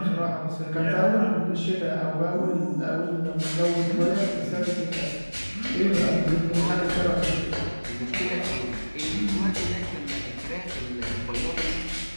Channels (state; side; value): inverted; both; correlation -1.00